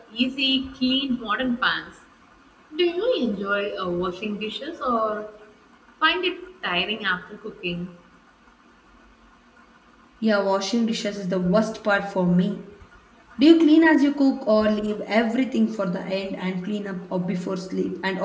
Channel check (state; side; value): identical; both; correlation 1.00